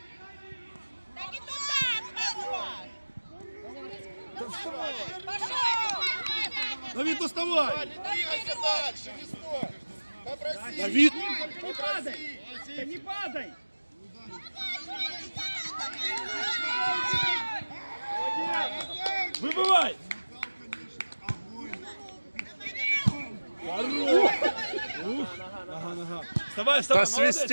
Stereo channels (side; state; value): both; inverted; correlation -1.00